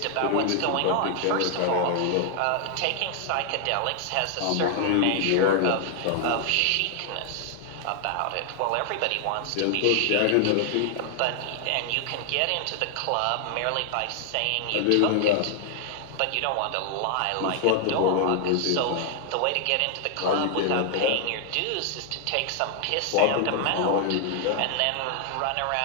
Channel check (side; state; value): both; different; correlation 0.00